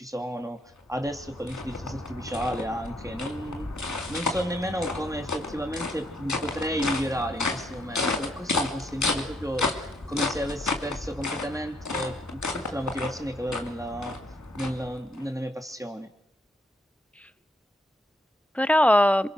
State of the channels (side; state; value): both; normal; correlation 0.74